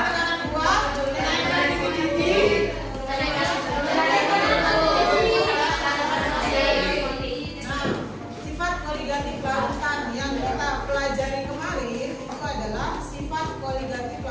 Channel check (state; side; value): identical; both; correlation 1.00